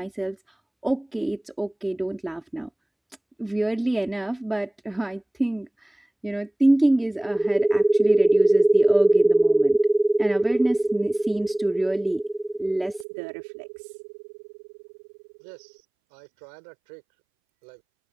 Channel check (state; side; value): drops out; left; at 13.1 s